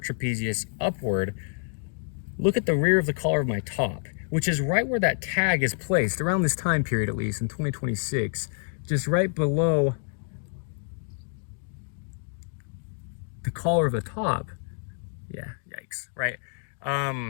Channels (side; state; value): right; silent; 60 dB below the other